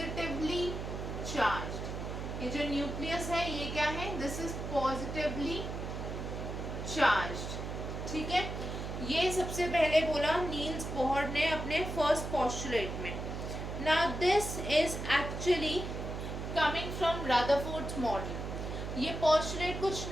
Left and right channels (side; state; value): right; noise; hum, 5 dB below the sound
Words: charged. ये जो nucleus है ये क्या है, this is positively charged. ठीक है, ये सबसे पहले बोला नील्स बोहर ने अपने फर्स्ट पोस्टुलेट में. Now this is actually coming from Rutherford's model. ये पोस्टुलेट कुछ